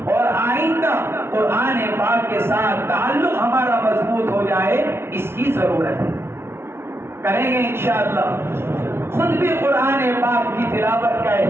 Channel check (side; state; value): left; late; 0.12 ms